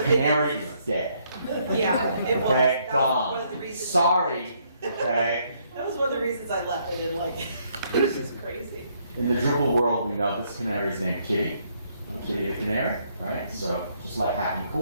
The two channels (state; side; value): inverted; both; correlation -0.71